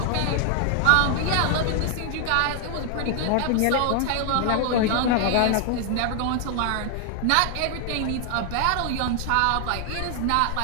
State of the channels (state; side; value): different; both; correlation 0.00